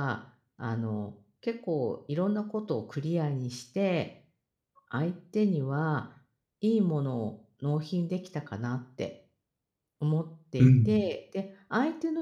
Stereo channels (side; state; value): both; identical; correlation 1.00